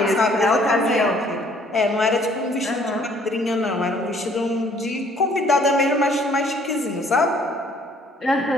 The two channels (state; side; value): normal; both; correlation 0.60